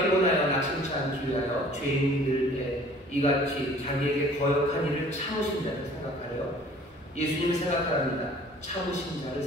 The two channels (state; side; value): normal; both; correlation 0.51